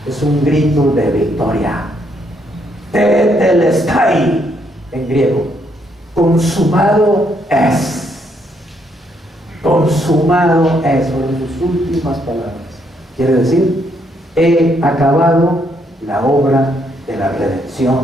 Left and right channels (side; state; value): both; normal; correlation 0.73